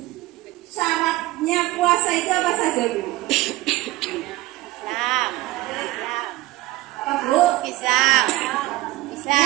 syaratnya puasa itu apa saja, Bu? Islam. Apa, Bu? Islam. Ya,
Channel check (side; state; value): left; quieter; 18.5 dB